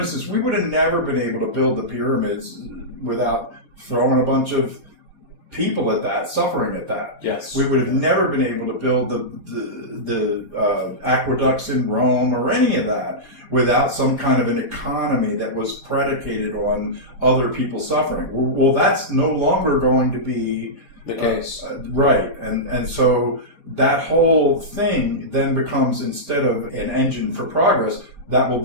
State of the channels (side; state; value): right; late; 4.2 ms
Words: we would have never been able to build the pyramids without throwing a bunch of people at that, suffering at that. Yes. We would have never been able to build the aqueducts in Rome or any of that without some kind of an economy that was predicated on other people suffering. Well, that's no longer going to be the case. Right. And so that whole thing then becomes, instead of an engine for progress, that will